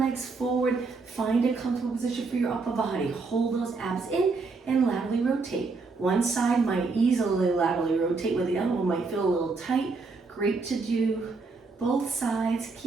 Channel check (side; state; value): left; quieter; 4.1 dB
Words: forward. Find a comfortable position for your upper body. Hold those abs in and laterally rotate. One side might easily laterally rotate where the other one might feel a little tight. Great to do. Both sides,